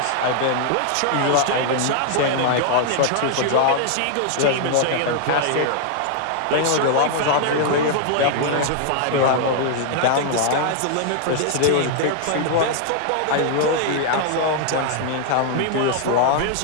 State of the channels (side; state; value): both; different; correlation 0.00